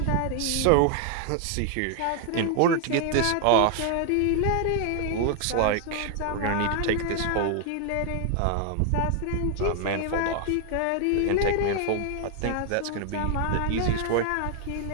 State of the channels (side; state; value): both; different; correlation 0.00